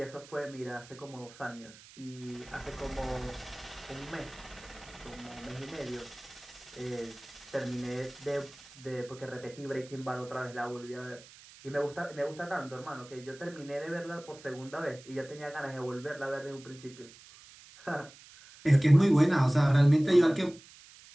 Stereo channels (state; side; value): noise; right; hiss, 21 dB below the sound